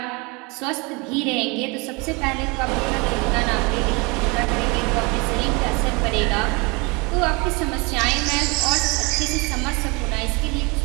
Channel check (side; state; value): left; quieter; 28.2 dB